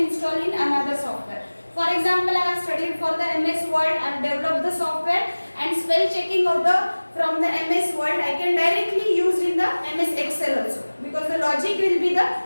install in another software. For example, I have studied for the MS Word, I have developed the software, and spell checking of the from the MS Word I can directly use in the MS Excel also, because the logic will be the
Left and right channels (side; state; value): both; inverted; correlation -1.00